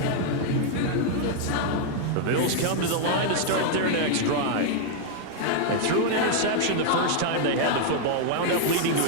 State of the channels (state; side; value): different; both; correlation 0.00